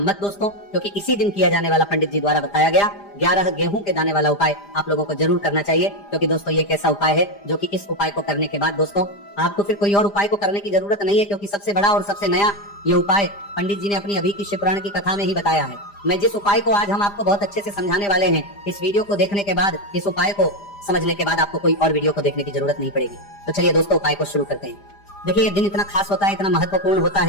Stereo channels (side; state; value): right; late; 5.0 ms